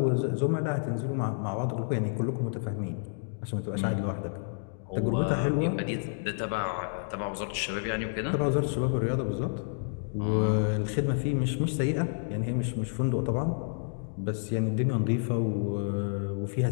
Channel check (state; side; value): silent; right; digital silence